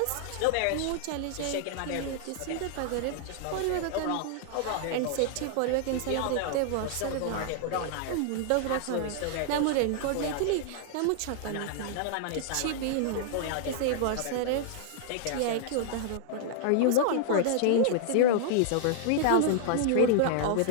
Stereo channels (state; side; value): different; both; correlation -0.01